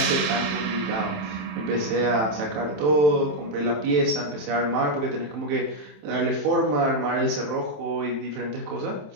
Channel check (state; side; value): late; left; 27 ms